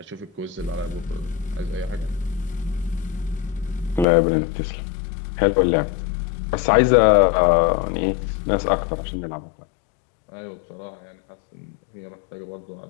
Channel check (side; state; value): right; drops out; at 4.0 s